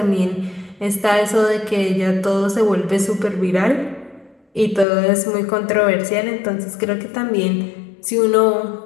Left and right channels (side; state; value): right; drops out; at 4.9 s